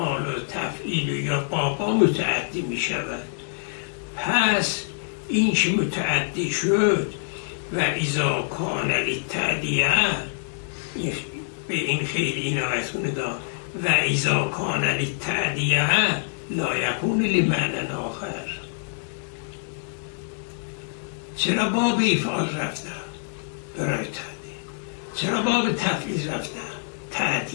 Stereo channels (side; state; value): right; silent; digital silence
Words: و تفعیل یا بابا متعدی می شود. پس این که متعدی شد و اذا کان للتعدیه، به این خیلی عنایتون دا و اذا کان للتعدیه لا یکون لمعنی آخر. چرا باب افعال رفتن برای تعدیه؟ چرا باب تفعیل رفتن؟